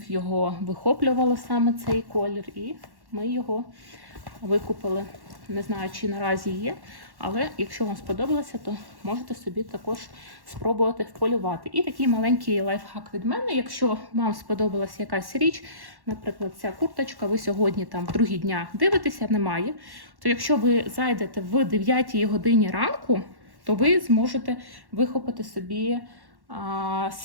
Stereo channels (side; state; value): left; late; 1.1 ms